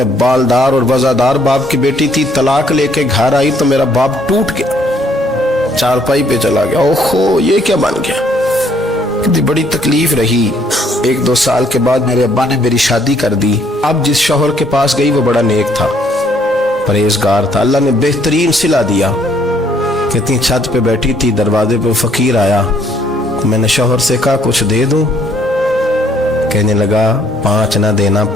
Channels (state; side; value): normal; both; correlation 0.66